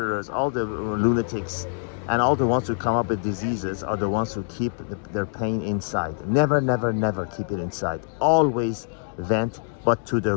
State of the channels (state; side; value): silent; right; digital silence